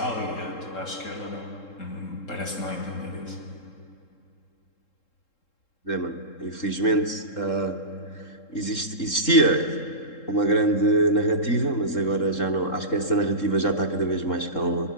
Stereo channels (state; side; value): late; right; 3.7 ms